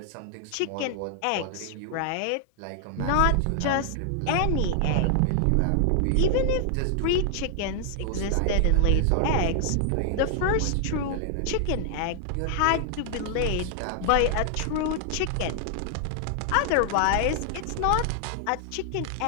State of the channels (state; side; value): different; both; correlation 0.00